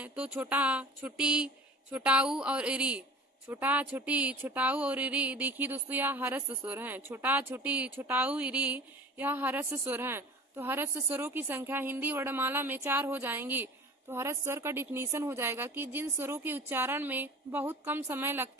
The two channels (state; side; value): normal; both; correlation 0.40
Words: तो छोटा, छोटी, छोटाऊ और इरी। छोटा छोटी छोटाऊ और इरी, देखिए दोस्तों यह हरस स्वर हैं। छोटा छोटी छोटाऊ इरी यह हरस स्वर हैं। तो हरस स्वरों की संख्या हिंदी वर्णमाला में 4 हो जाएंगी। तो हरस स्वर का डिफिनीशन हो जाएगा कि जिन स्वरों के उच्चारण में बहुत कम समय